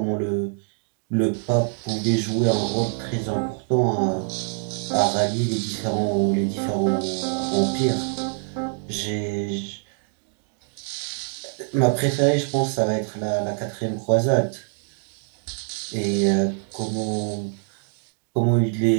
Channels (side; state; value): left; silent; 61 dB below the other